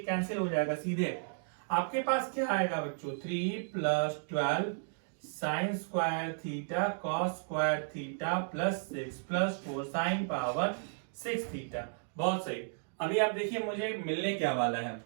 कैंसिल हो जाएगा सीधे। आपके पास क्या आएगा बच्चों, 3 plus 12 sine square theta cos square theta plus 6 plus 4 sine power 6 theta. बहुत सही। अभी आप देखिए मुझे मिलने क्या वाला है,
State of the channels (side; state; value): left; silent; digital silence